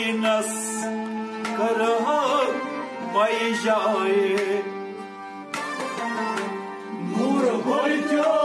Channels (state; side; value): identical; both; correlation 1.00